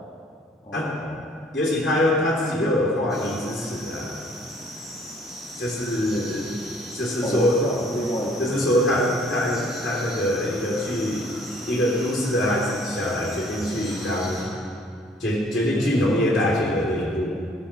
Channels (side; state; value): both; normal; correlation 0.58